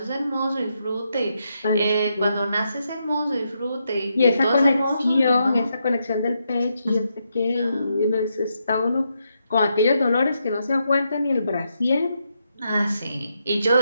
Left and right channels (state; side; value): inverted; both; correlation -0.81